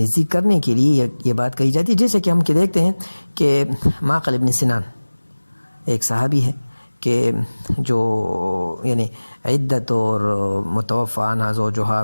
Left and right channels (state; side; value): inverted; both; correlation -1.00